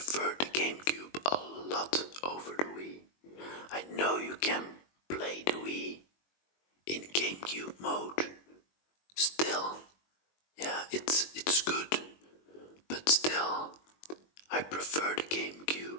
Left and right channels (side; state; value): right; late; 21 ms